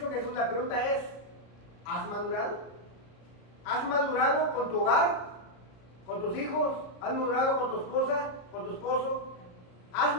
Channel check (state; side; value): late; right; 33 ms